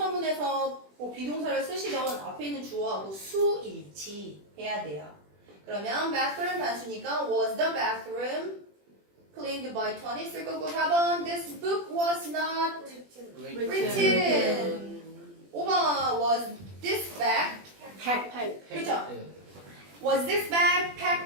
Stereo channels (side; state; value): left; late; 20 ms